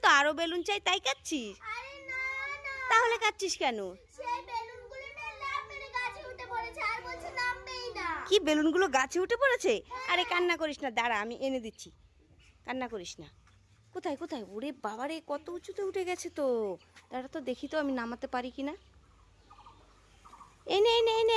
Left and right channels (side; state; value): both; identical; correlation 1.00